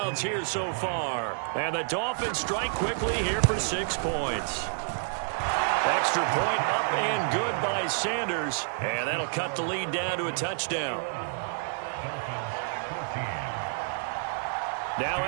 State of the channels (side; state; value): left; silent; 59 dB below the other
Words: here so far. And the Dolphins strike quickly here for 6 points. Extra point up and good by Sanders. And that'll cut the lead down to a touchdown. Now